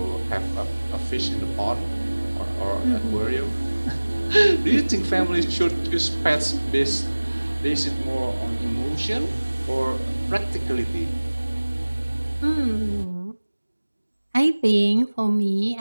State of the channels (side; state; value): both; inverted; correlation -1.00